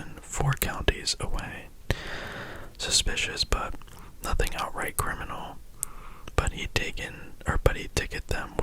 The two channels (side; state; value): both; identical; correlation 1.00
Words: 4 counties away. Suspicious, but nothing outright criminal. But he'd ticket them